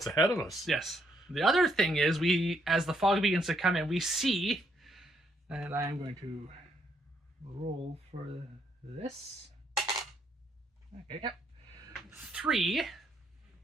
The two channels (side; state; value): both; normal; correlation 0.73